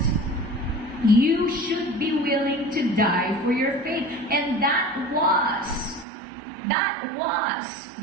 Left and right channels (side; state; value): left; drops out; at 6.1 s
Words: You should be willing to die for your faith. And that was